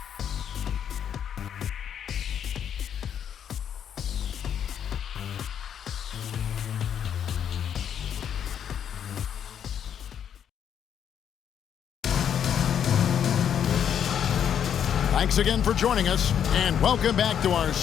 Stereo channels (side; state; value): right; quieter; 8.8 dB